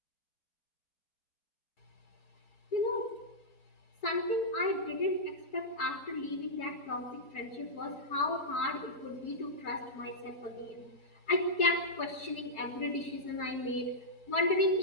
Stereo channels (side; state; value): right; late; 4.7 ms